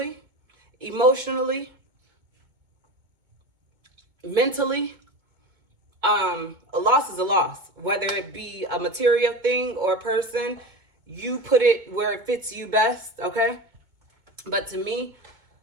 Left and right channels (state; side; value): late; left; 2.2 ms